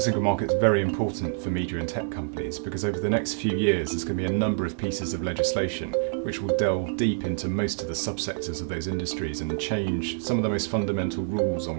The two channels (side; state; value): left; silent; 60 dB below the other